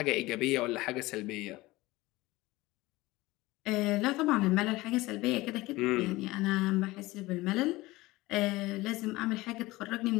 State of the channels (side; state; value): right; quieter; 19.8 dB